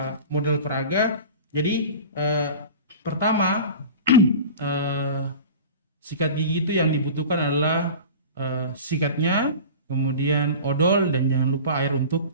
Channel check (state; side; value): inverted; both; correlation -0.36